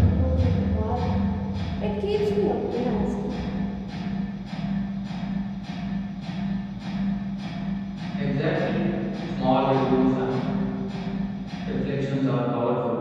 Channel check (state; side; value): identical; both; correlation 1.00